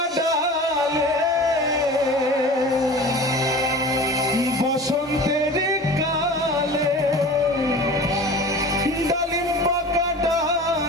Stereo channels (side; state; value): both; normal; correlation 0.38